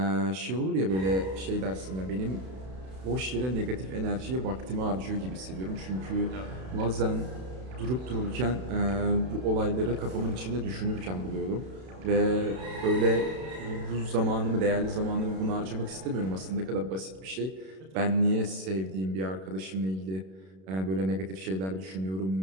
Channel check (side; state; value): left; late; 32 ms